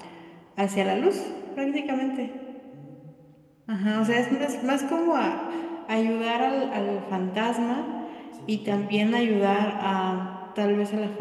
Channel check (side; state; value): both; identical; correlation 1.00